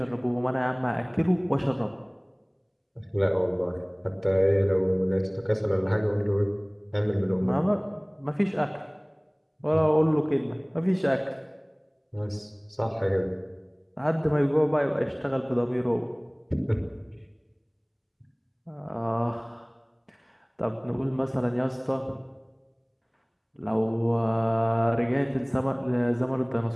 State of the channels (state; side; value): identical; both; correlation 1.00